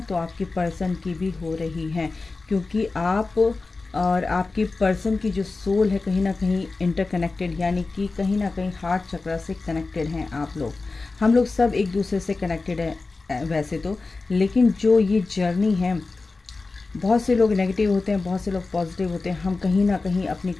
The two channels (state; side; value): quieter; right; 3.7 dB